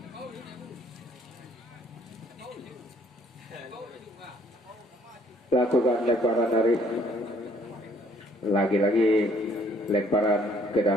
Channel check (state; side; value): normal; both; correlation 0.62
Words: Lakukan lemparan Arif. Lagi-lagi lemparan ke